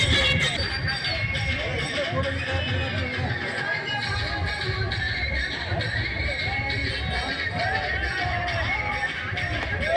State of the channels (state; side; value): identical; both; correlation 1.00